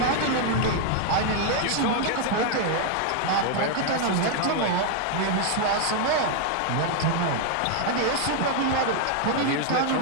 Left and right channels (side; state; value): both; different; correlation 0.00